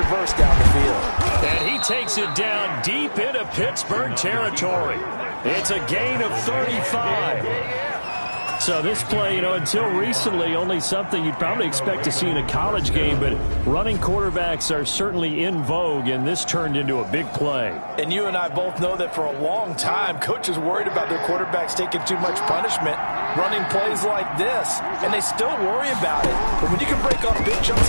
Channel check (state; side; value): inverted; both; correlation -1.00